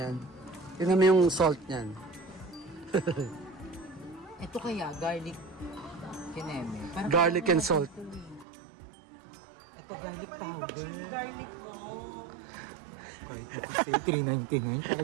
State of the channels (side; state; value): left; drops out; at 8.5 s